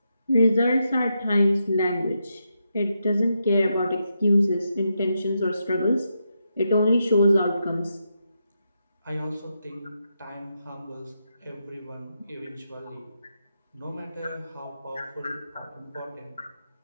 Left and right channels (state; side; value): inverted; both; correlation -0.84